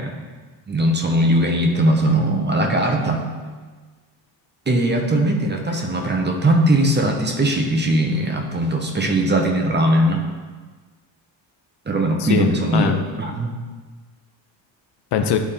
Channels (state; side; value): normal; both; correlation 0.47